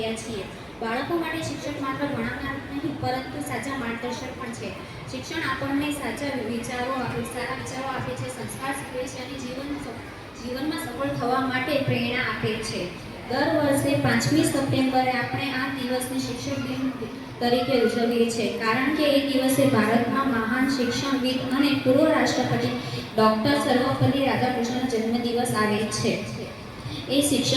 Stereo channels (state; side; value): identical; both; correlation 1.00